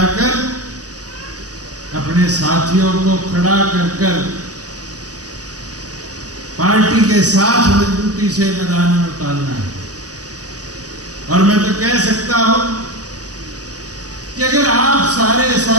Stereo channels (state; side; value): late; left; 0.67 ms